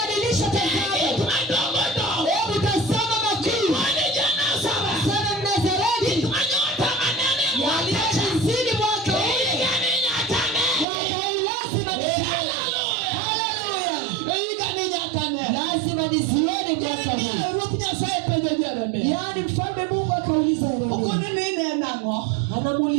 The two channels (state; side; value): drops out; left; at 10.9 s